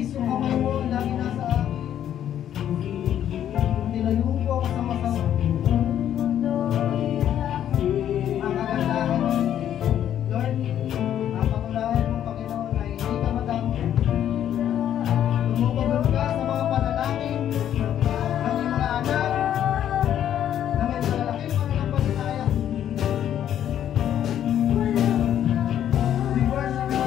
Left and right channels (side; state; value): right; quieter; 10.5 dB